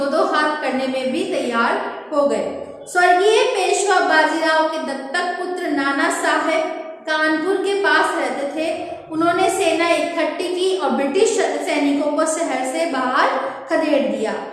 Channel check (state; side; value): identical; both; correlation 1.00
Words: हाथ करने में भी तैयार हो गए। स्वर्गीय पेशवा बाजीराव के दत्तक पुत्र नाना साहेब कानपुर के पास रहते थे। उन्होंने सेना इकट्ठी की और ब्रिटिश सैनिकों को शहर से बाहर खदेड़ दिया।